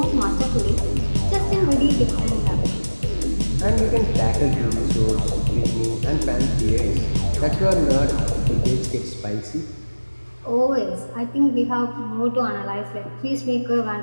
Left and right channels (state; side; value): inverted; both; correlation -1.00